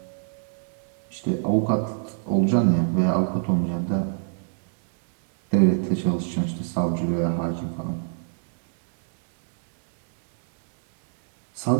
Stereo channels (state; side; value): silent; left; digital silence